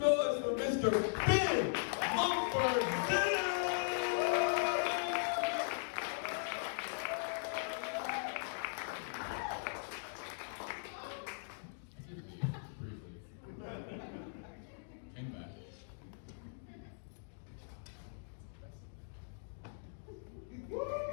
for Mr. Ben Mumford-Zisk. Came back.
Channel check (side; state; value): right; silent; digital silence